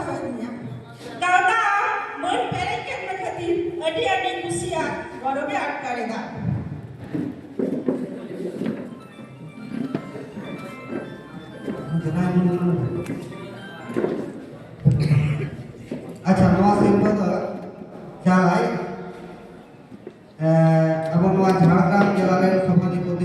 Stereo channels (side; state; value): both; identical; correlation 1.00